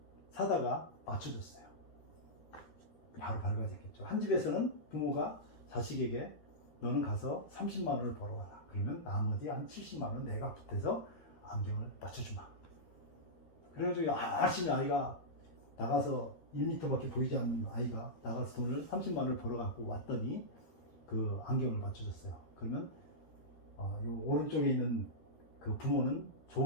사다가 맞춰줬어요. 바로 밝아졌겠죠. 한 집에서는 부모가 자식에게 너는 가서 30만 원을 벌어와라. 그러면 나머지 한 70만 원 내가 보태서 안경을 맞춰주마. 그래가지고 열심히 아이가 나가서 1m밖에 보이지 않는 아이가 나가서 돈을 30만 원을 벌어갖고 왔더니 그 안경을 맞춰줬어요. 그러면 요 오른쪽에 있는 그 부모는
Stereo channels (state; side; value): late; right; 13 ms